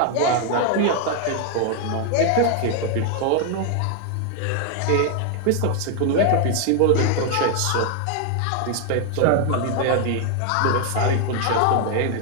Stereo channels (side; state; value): both; different; correlation 0.01